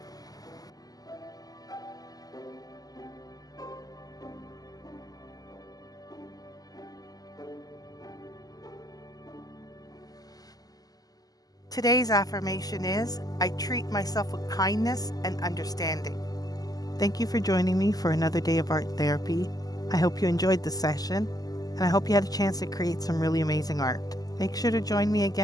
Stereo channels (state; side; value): late; right; 0.18 ms